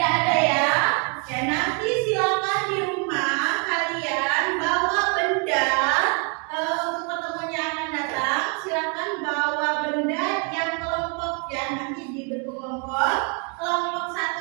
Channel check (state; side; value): quieter; left; 36.1 dB